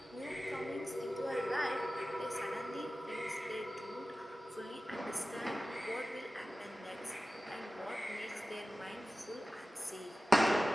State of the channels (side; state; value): both; normal; correlation 0.96